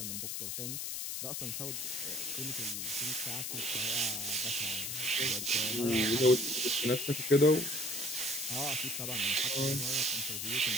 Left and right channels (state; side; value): noise; left; hiss, 3 dB below the sound